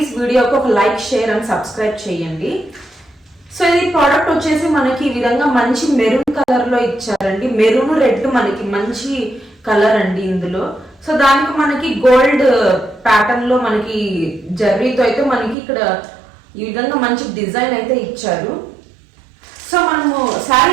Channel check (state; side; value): drops out; left; at 15.6 s